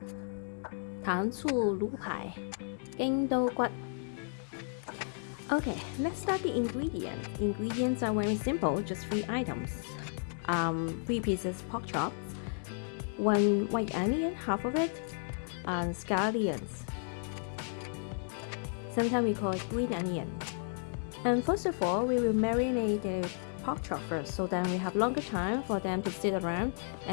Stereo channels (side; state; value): right; silent; digital silence